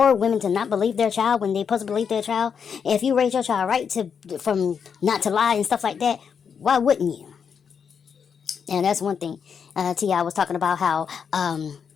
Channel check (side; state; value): right; quieter; 6.8 dB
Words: women to not believe their child when they supposed to believe their child, if you raise your child right from not to lie and stuff like that, why wouldn't you? And that's one thing. T.I. was talking about how